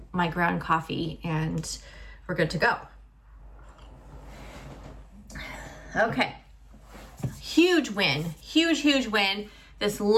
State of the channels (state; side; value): identical; both; correlation 1.00